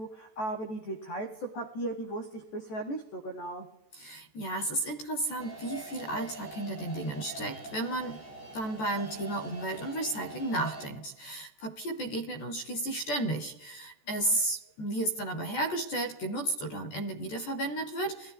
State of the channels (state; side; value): late; right; 14 ms